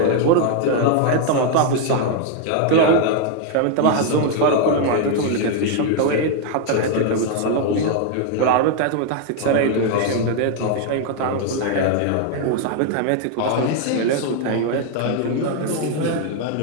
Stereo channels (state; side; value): different; both; correlation 0.00